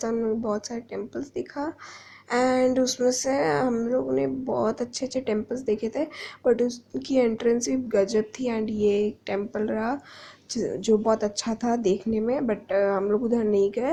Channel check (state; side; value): identical; both; correlation 1.00